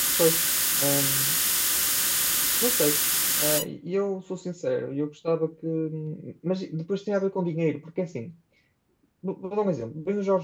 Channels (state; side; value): identical; both; correlation 1.00